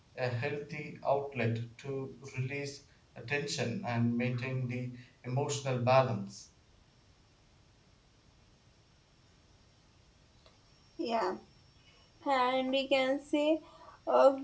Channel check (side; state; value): both; identical; correlation 1.00